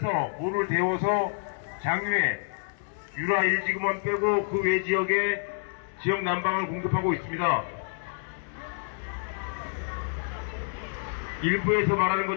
물을 데워서 장유에 유라 1지구만 빼고 그 외 지역에 지역 난방을 공급하고 있습니다. 일부에서 말하는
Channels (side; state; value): right; silent; 59 dB below the other